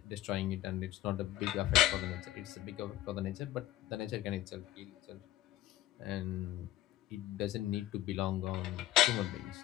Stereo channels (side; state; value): right; quieter; 14.0 dB